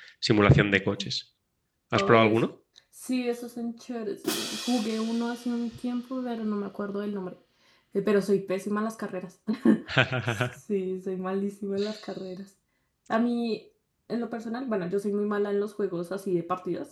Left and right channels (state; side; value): identical; both; correlation 1.00